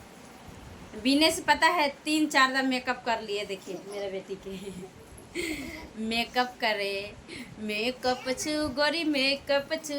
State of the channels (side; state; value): both; identical; correlation 1.00